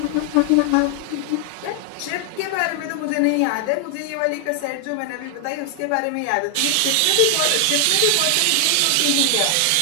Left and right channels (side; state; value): both; different; correlation 0.00